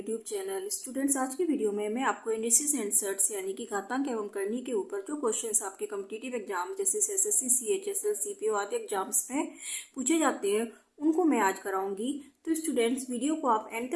channel. Students, आज की video में मैं आपको इंडिसेस एंड सर्ट्स यानी कि घातांक एवं करनी के ऊपर जो क्वेश्चंस आपके कॉम्पिटिटिव एग्जाम जैसे एसएससी, सीएचएसएल, सीपीओ आदि एग्जाम्स में पूछे जाते हैं उनको मैं आज कराऊंगी। तो स्टूडेंट्स, वीडियो को आप एंड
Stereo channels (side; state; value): both; identical; correlation 1.00